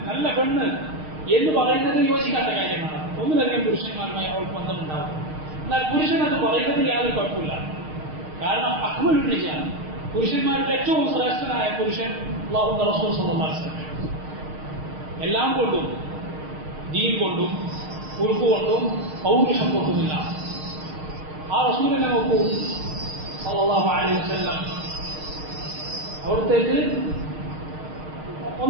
നല്ല പെണ്ണ് എന്ന് പറയുന്നത് യോജിക്കാത്ത കാര്യമാണ്. ഒന്നിലധികം പുരുഷന്മാരുമായി അവൾക്ക് ബന്ധമുണ്ടാവും. എന്നാൽ പുരുഷൻ അത് പറയുന്നത് യാതൊരു കുഴപ്പമില്ല. കാരണം അക്മലുൻ റിജാൽ, പുരുഷന്മാരിൽ ഏറ്റവും ശ്രേഷ്ഠനായ പുരുഷൻ അല്ലാഹുവിന്റെ റസൂൽ സല്ലല്ലാഹു അലൈഹി വസല്ലം. എല്ലാം കൊണ്ടും, ദീൻ കൊണ്ടും ഉറുഫ് കൊണ്ടും പൗരുഷം കൊണ്ടുമില്ല. ആ റസൂലിനെ നോക്കൂ സല്ലല്ലാഹു അലൈഹി വസല്ലം. അവിടത്തേക്ക്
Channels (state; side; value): late; left; 6.5 ms